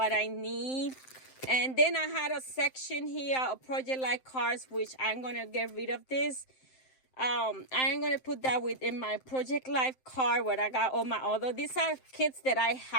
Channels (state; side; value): late; right; 7.7 ms